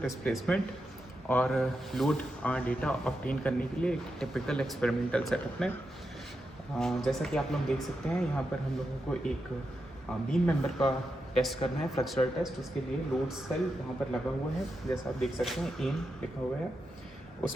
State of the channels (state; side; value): normal; both; correlation 0.87